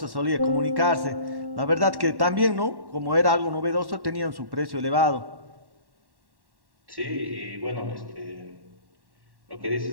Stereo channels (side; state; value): left; late; 1.1 ms